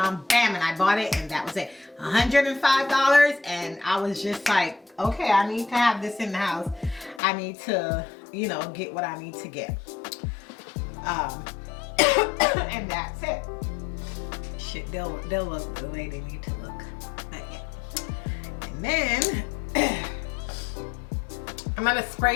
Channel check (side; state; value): right; drops out; at 7.2 s